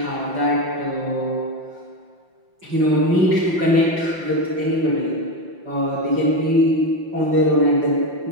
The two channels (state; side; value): late; left; 5.8 ms